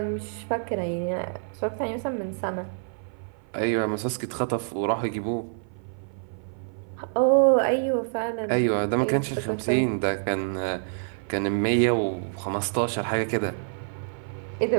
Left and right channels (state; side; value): silent; left; 56 dB below the other